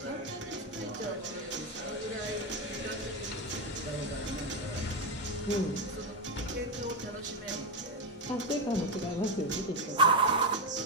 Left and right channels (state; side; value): normal; both; correlation 0.09